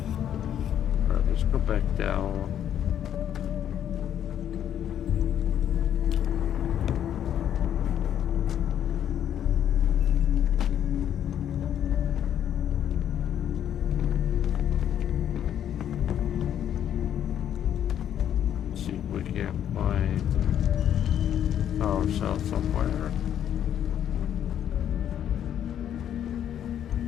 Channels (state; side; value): quieter; right; 10.0 dB